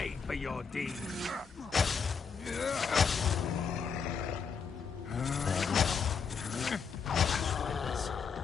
for your deeds.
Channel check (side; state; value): right; quieter; 6.0 dB